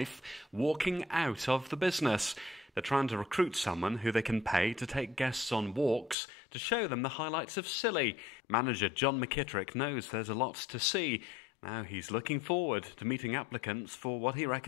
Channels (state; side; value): drops out; right; at 6.2 s